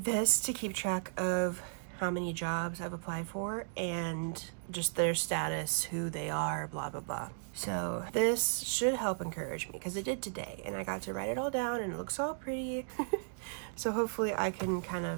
this to keep track of how many jobs I've applied for and just their status, who they are, blah, blah, blah. So this should help encourage me, because it did today, and I got to write it all down and it looks all pretty. So hopefully I can kind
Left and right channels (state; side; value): silent; left; digital silence